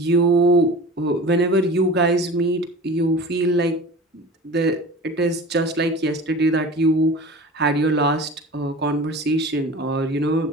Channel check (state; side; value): normal; both; correlation 0.37